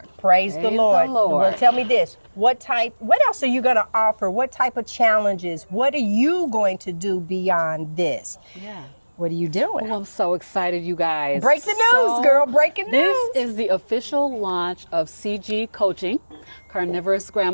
Praise the Lord. Well, tell me this. What else are you going to offer? What type of challenges? What are you going to do beyond this? Yeah. What are you doing? Oh, I'm so excited, you guys. Break the news, girl. Breaking news. This is the official launch of CG Coaching, Carnivorous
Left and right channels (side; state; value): both; inverted; correlation -1.00